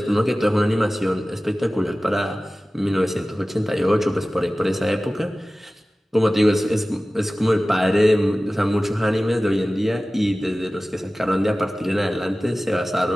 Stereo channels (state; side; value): normal; both; correlation 0.97